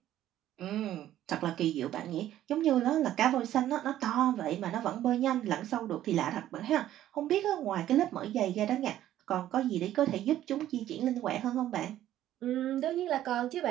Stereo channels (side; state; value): left; quieter; 12.6 dB